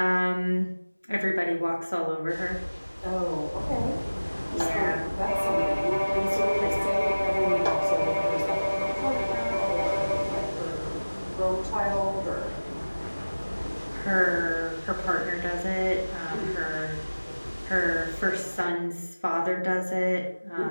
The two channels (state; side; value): inverted; both; correlation -1.00